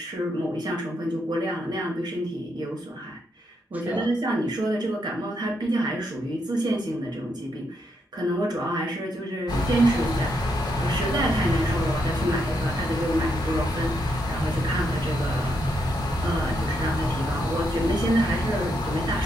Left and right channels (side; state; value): both; normal; correlation 0.79